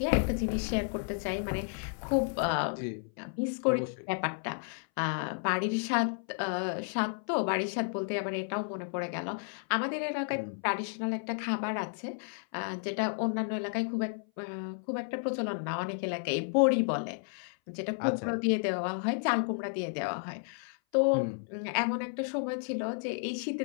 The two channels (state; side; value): silent; right; 56 dB below the other